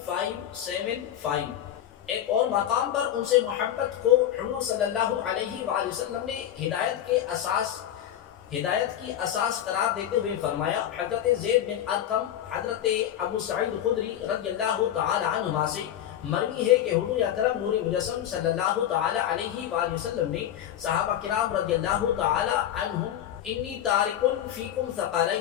ایک اور مقام پر ان سے محبت کو حضور صلی اللہ علیہ وآلہ وسلم نے ہدایت کی اساس قرار دیتے ہوئے فرمایا، حضرت زید بن ارقم حضرت ابو سعید خدری رضی اللہ تعالی عنہما سے مروی ہے کہ حضور اکرم نور مجسم صلی اللہ تعالی علیہ وآلہ وسلم نے صحابہ کرام رضی اللہ تعالی عنہم انی تارک فیکم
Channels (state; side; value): quieter; right; 11.0 dB